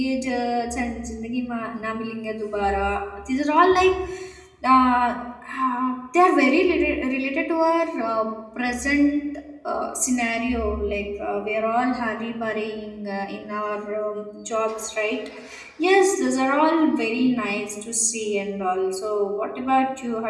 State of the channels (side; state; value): both; identical; correlation 1.00